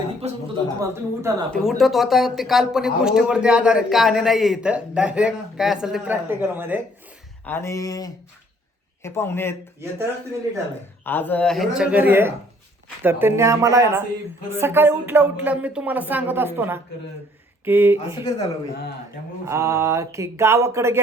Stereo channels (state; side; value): normal; both; correlation 0.61